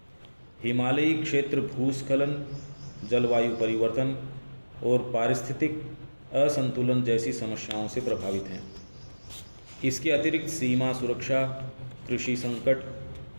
हिमालयी क्षेत्र भूस्खलन, जलवायु परिवर्तन और पारिस्थितिक असंतुलन जैसी समस्याओं से प्रभावित हैं। इसके अतिरिक्त सीमा सुरक्षा, कृषि संकट,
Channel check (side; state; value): both; inverted; correlation -1.00